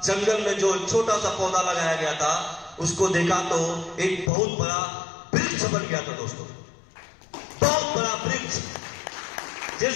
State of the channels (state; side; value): drops out; right; at 4.3 s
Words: जंगल में जो छोटा सा पौधा लगाया गया था उसको देखा तो एक बहुत बड़ा वृक्ष बन गया था। दोस्तों, बहुत बड़ा वृक्ष, जिस